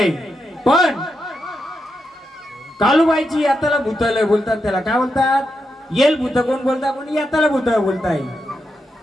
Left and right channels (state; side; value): normal; both; correlation 0.85